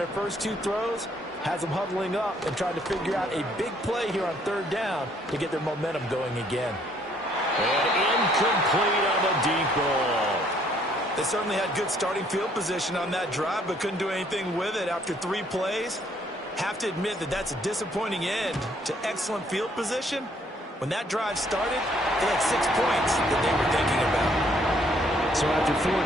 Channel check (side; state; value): both; normal; correlation 0.65